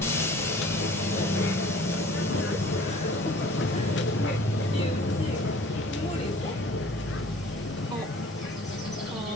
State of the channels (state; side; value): normal; both; correlation 0.49